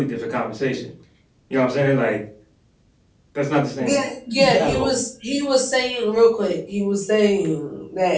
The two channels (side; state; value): both; identical; correlation 1.00